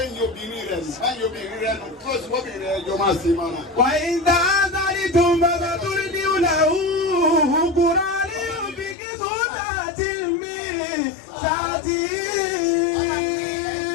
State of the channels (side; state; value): right; drops out; at 9.0 s